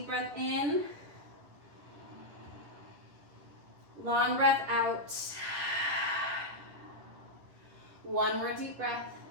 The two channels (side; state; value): left; late; 10 ms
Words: breath in, long breath out, one more deep breath.